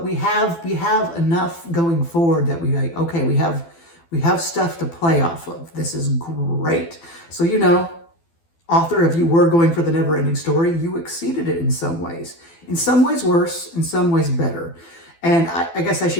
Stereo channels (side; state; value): right; late; 12 ms